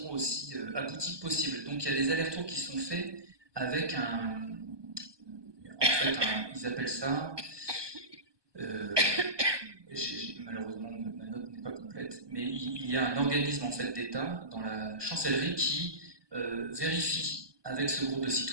aussi aboutie que possible. Donc il y a des allers-retours qui sont faits avec ils appellent ça, malheureusement ma note n'est pas complète, mais il y a un organisme en fait d'État dans la chancellerie qui vérifie avec ce groupe de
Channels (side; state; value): left; late; 1.2 ms